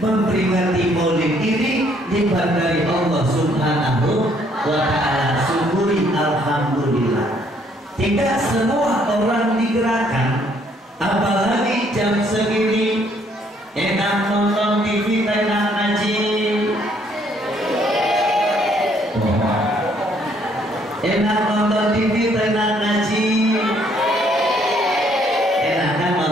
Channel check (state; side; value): normal; both; correlation 0.66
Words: maulid ini, nikmat dari Allah Subhanahu wa ta'ala. Syukuri alhamdulillah. Tidak semua orang digerakkan, apalagi jam segini enak nonton TV, enak ngaji, enak nonton TV, enak ngaji, enak kan